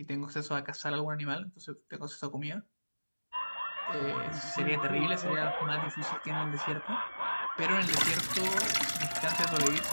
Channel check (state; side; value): inverted; both; correlation -1.00